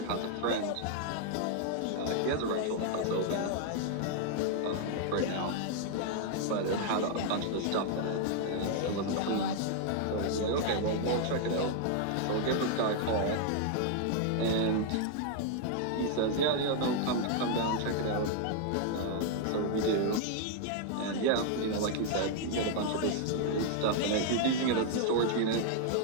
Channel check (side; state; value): both; different; correlation 0.00